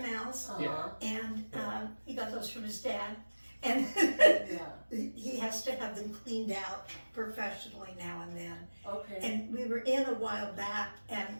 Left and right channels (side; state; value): both; inverted; correlation -1.00